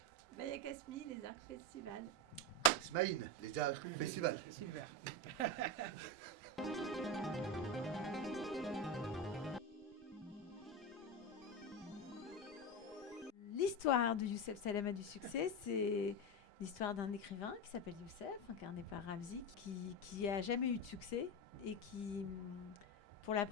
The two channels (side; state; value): both; normal; correlation 0.16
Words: Maya Kasmi, les Arcs Festival. Smaïn, les Arcs Festival. Super. L'histoire de Youssef Salama du succès, c'est l'histoire d'un écrivain qui s'appelle Youssef, incarné par Ramzi, qui a jamais eu de succès et qui, pour la